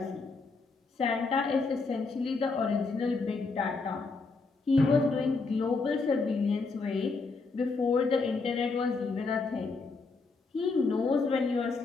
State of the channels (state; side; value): quieter; right; 4.1 dB